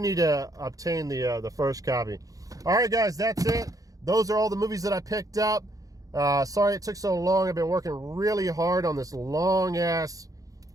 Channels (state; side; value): late; left; 0.17 ms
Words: to obtain the first copy. All right, guys, that's it. Those are all the movies that I picked up. Sorry it took so long. I've been working really hard on this long-ass